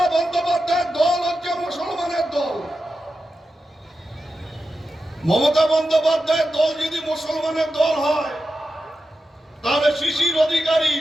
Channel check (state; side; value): normal; both; correlation 0.90